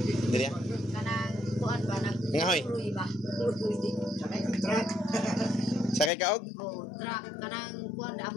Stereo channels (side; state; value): right; drops out; at 6.1 s